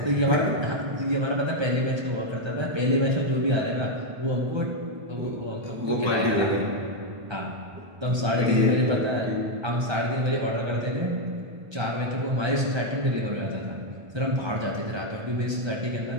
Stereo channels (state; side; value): late; left; 1.3 ms